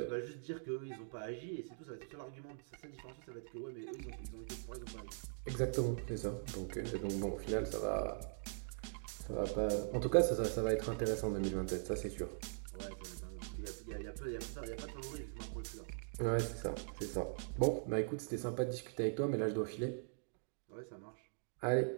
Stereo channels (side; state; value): left; silent; digital silence